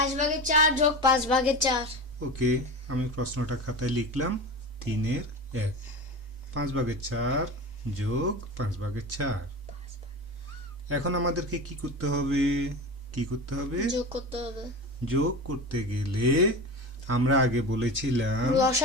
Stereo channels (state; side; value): normal; both; correlation 0.27